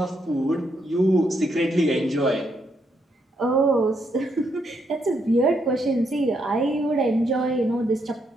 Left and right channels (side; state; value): both; normal; correlation 0.77